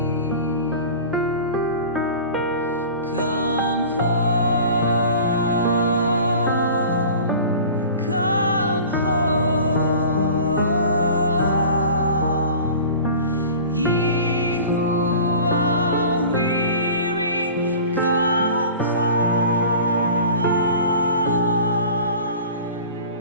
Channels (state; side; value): inverted; both; correlation -0.40